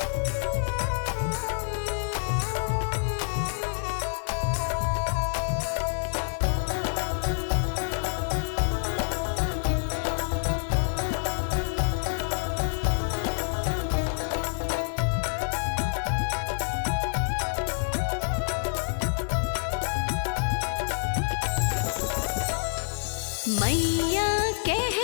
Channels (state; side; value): silent; right; digital silence